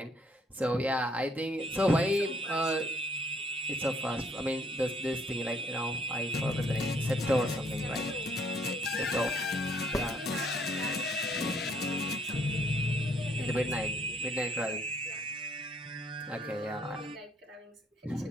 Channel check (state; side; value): normal; both; correlation 0.65